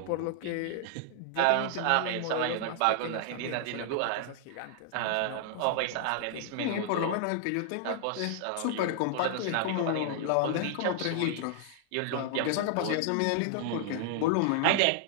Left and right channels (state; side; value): different; both; correlation -0.01